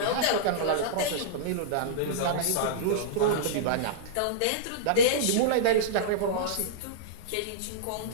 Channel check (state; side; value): different; both; correlation -0.03